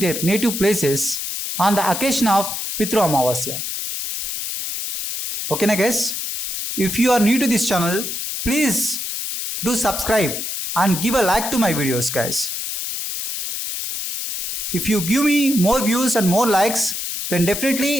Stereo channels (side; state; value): left; noise; hiss, 4 dB below the sound